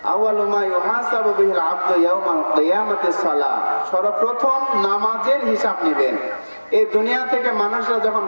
আউয়ালু মা ইউহাসাবু বিহিল আবদু ইয়াউমাল কিয়ামাতিস সালাহ, সর্বপ্রথম নামাজের হিসাব নেবেন। এই দুনিয়া থেকে মানুষরা যখন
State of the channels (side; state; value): both; inverted; correlation -1.00